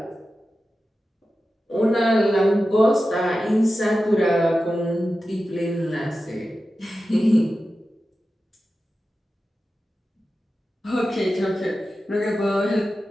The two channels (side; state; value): both; normal; correlation 0.93